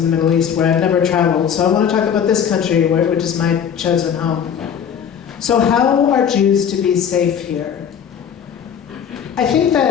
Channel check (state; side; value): quieter; right; 8.1 dB